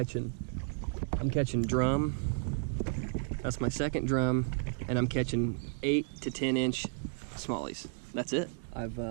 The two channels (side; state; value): left; silent; digital silence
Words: drum. That's my second drum, and I'm catching 8 to 10 inch smallies. That's it. I've